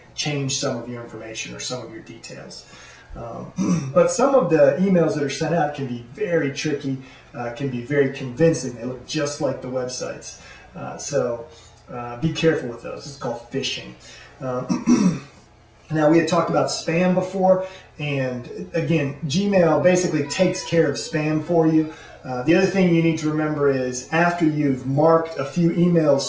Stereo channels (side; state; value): both; identical; correlation 1.00